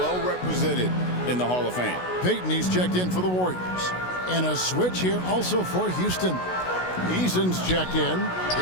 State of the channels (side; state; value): right; late; 16 ms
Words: represented in the Hall of Fame. Payton, he's checked in for the Warriors. And a switch here also for Houston. Eason's checked in.